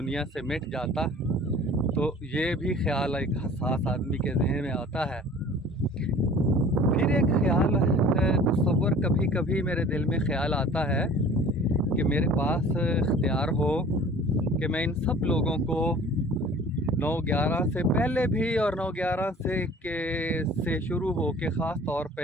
से मिट जाता। तो ये भी ख्याल एक हसास आदमी के जहन में आता है। फिर एक ख्याल तस्वर कभी कभी मेरे दिल में ख्याल आता है कि मेरे पास इख्तियार हो कि मैं इन सब लोगों को 9/11 से पहले भी और 9/11 से शुरू हो के ख़ास तौर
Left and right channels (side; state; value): both; normal; correlation 0.46